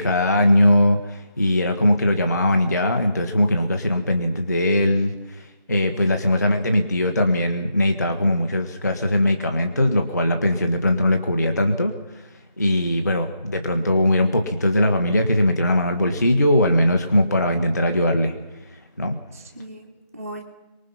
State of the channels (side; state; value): both; inverted; correlation -0.80